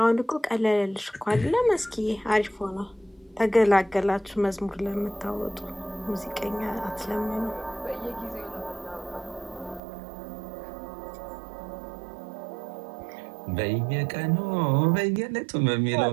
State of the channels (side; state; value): left; drops out; at 9.8 s